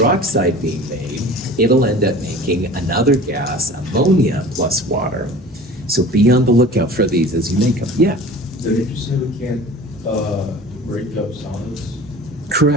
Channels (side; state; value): both; normal; correlation 0.41